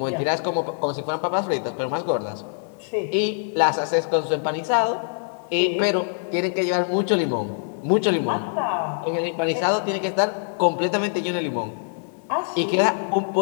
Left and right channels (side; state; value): right; silent; digital silence